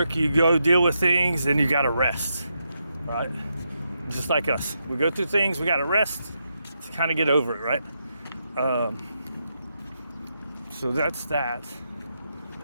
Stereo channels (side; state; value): both; inverted; correlation -0.83